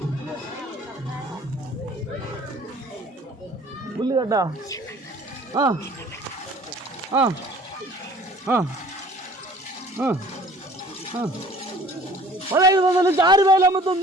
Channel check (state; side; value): normal; both; correlation 0.50